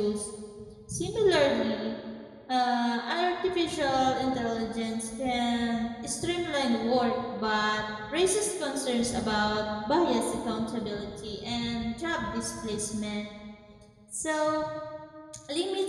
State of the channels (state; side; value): identical; both; correlation 1.00